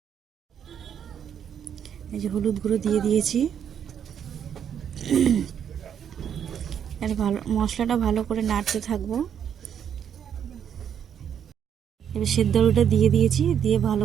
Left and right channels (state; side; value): quieter; left; 8.6 dB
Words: এই যে হলুদ গুঁড়ো দিয়ে দিয়েছি। আর মশলাটা ভালো করে নাড়তে থাকবো। এবার সেদ্ধ আলুটা দিয়ে দিয়েছি, দিয়ে ভালো